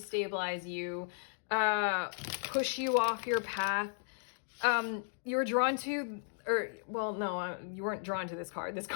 you, push you off your path. You were drawn to, you weren't drawn to this card. This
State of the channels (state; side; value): silent; right; digital silence